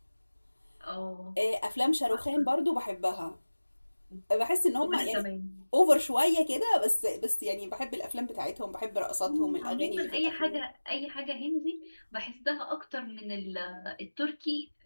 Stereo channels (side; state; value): both; inverted; correlation -1.00